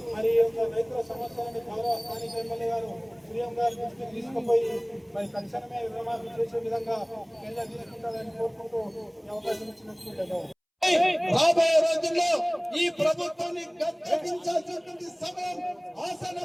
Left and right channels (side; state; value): both; identical; correlation 1.00